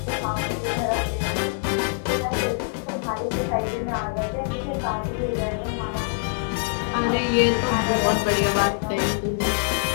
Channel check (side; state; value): right; silent; digital silence